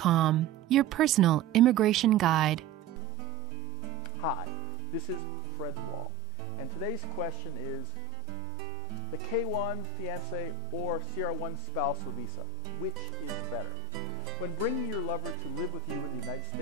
your personal immigration guide. Hi, this is Fred Wall, and today's question is the K1 Fiancé or CR1 Spousal Visa, which is better? When bringing your lover to live with you in the United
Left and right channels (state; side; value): quieter; left; 6.1 dB